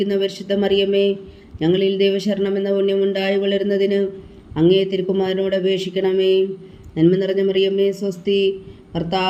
പരിശുദ്ധ മറിയമേ, ഞങ്ങളിൽ ദൈവശരണം എന്ന പുണ്യമുണ്ടായി വളരുന്നതിന് അങ്ങേ തിരുക്കുമാരനോട് അപേക്ഷിക്കണമേ. നന്മ നിറഞ്ഞ മറിയമേ സ്വസ്തി,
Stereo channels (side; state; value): both; identical; correlation 1.00